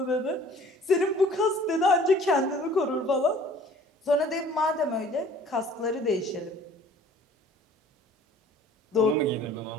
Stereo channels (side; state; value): both; normal; correlation 0.52